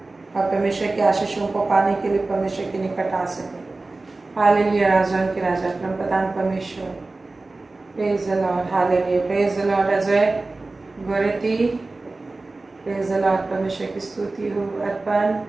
और परमेश्वर के आशीषों को पाने के लिए परमेश्वर के निकट आ सके। हालेलुया। राजाओं के राजा परमप्रधान परमेश्वर। Praise the Lord. Hallelujah. Praise the Lord. Ajay Goreti. Praise the Lord. परमेश्वर की स्तुति हो। अर्पण।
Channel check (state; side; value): quieter; left; 3.3 dB